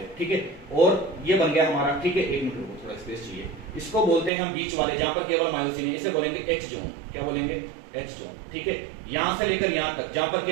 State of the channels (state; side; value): drops out; left; at 4.3 s